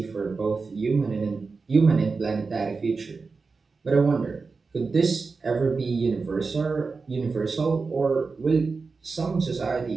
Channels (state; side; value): quieter; left; 4.4 dB